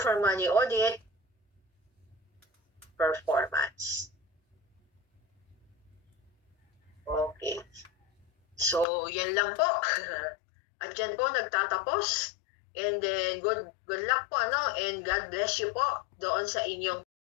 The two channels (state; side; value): drops out; right; at 8.8 s